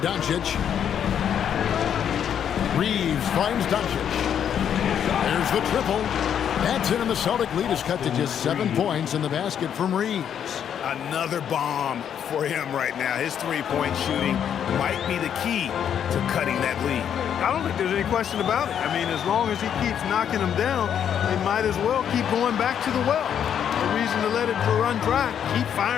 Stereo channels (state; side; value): quieter; right; 8.9 dB